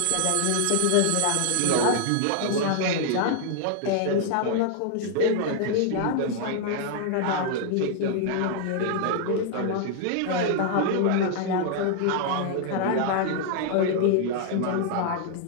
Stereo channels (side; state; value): both; different; correlation 0.00